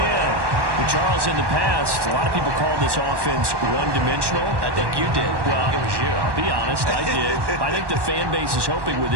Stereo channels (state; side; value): late; left; 1.1 ms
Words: But Charles, in the past, a lot of people called this offense one-dimensional. I think you did. Well, it was you. I'll be honest, I did. I think the fan base is hoping with